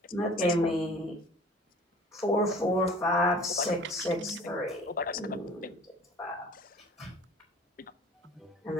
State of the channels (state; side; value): normal; both; correlation 0.47